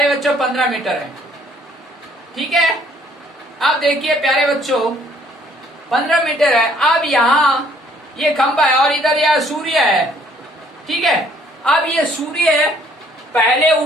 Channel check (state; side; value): normal; both; correlation 0.62